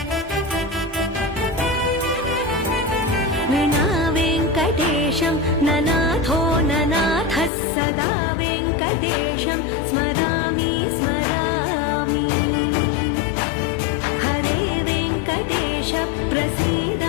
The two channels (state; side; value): drops out; right; at 7.5 s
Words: विना वेङ्कटेशं ननाथो ननाथः सदा वेङ्कटेशं स्मरामि स्मरामि हरे वेङ्कटेश प्रसीद